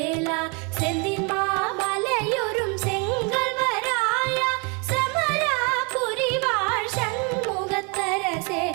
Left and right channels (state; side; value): quieter; left; 33.0 dB